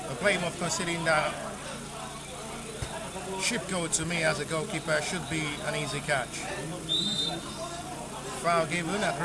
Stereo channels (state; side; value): identical; both; correlation 1.00